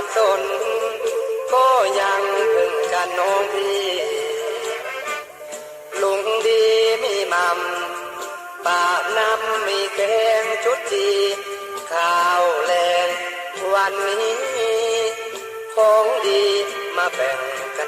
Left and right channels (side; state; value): both; identical; correlation 1.00